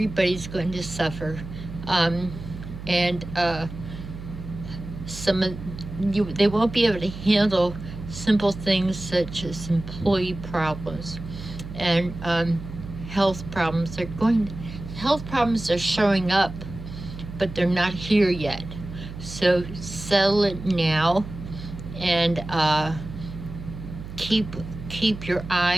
going to suffer. They won't be able to handle simple things such as employee problems and health problems. Health problems are showing up, but they're not here yet. So settle it now, and keep your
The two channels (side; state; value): right; noise; hum, 11 dB below the sound